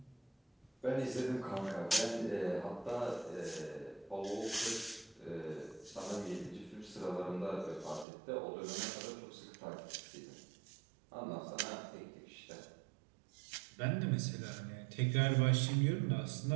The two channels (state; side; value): drops out; left; at 8.1 s